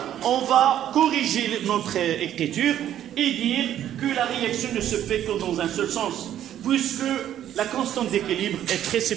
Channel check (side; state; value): left; quieter; 11.2 dB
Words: on va corriger notre écriture et dire que la réaction ne se fait que dans un seul sens, puisque la constante d'équilibre est très